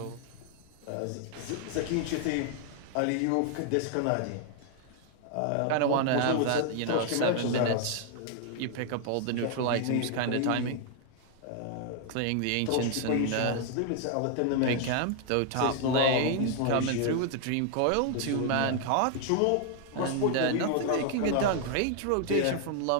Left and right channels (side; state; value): both; different; correlation 0.00